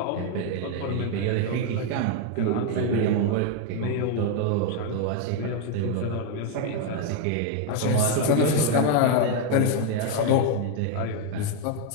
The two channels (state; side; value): different; both; correlation 0.01